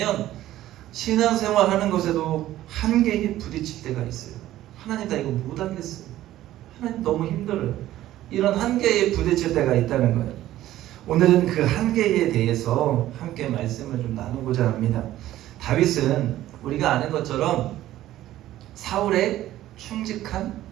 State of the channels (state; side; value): quieter; left; 14.1 dB